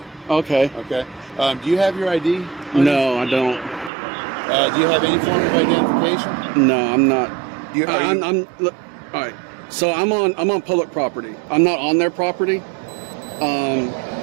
Okay. Okay. Do you have your ID? No, I don't. Do you have any form of identification? No, I'm not. Look, all right. So I'm on public property. I'm not on their property.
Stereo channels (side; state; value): left; drops out; at 3.9 s